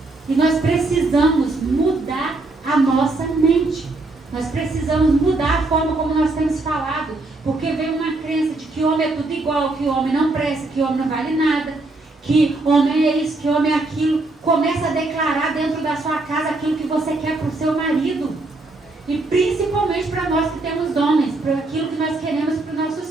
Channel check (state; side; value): quieter; left; 3.1 dB